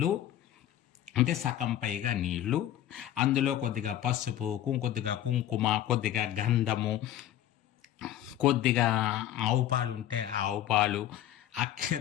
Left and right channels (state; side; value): quieter; right; 12.1 dB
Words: అంటే సగం పైగా నీళ్లు, అందులో కొద్దిగా పసుపు, కొద్దిగా కుంకుమ, కొద్దిగా గంధము, కొద్దిగా ఆవు పాలు ఉంటే ఆవు పాలు,